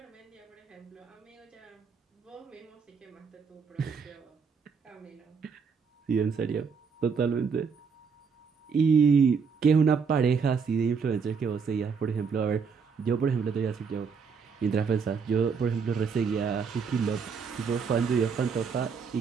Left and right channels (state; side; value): quieter; left; 5.8 dB